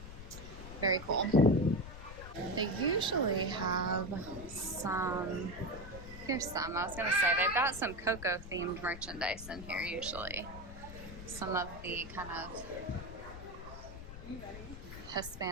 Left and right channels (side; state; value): left; noise; rumble, 12 dB below the sound